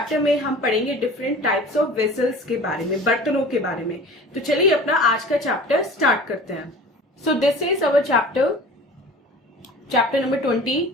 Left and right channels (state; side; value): normal; both; correlation 0.41